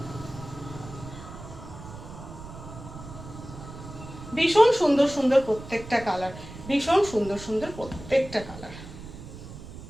ভীষণ সুন্দর সুন্দর প্রত্যেকটা কালার, ভীষণ সুন্দর সুন্দর প্রত্যেকটা কালার।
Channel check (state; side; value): noise; right; rumble, 13 dB below the sound